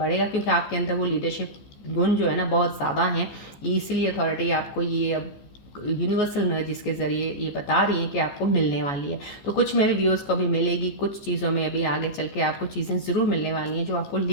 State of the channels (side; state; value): right; late; 14 ms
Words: क्योंकि आपके अंदर वो लीडरशिप गुण जो है ना बहुत ज़्यादा हैं, इसलिए अथॉरिटी आपको ये अब यूनिवर्सल एनर्जीज के ज़रिए ये बता रही है कि आपको मिलने वाली है। तो कुछ मेरे व्यूअर्स को भी मिलेगी, कुछ चीज़ों में अभी आगे चल के आपको चीज़ें ज़रूर मिलने वाली हैं जो आपको